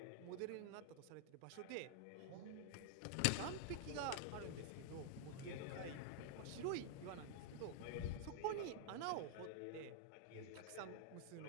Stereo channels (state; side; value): different; both; correlation 0.00